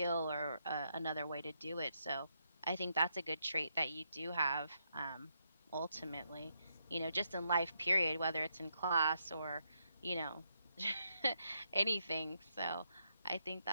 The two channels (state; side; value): inverted; both; correlation -0.79